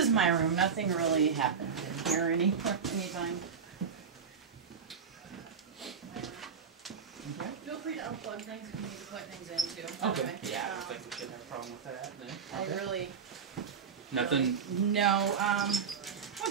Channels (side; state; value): left; quieter; 6.5 dB